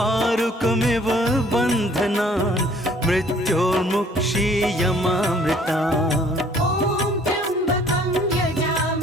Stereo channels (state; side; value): normal; both; correlation 0.58